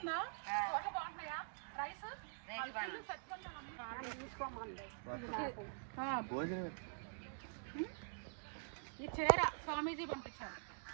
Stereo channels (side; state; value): left; silent; digital silence